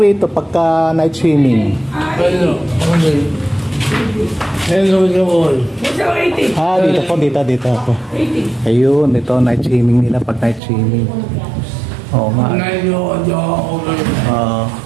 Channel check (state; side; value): drops out; left; at 10.6 s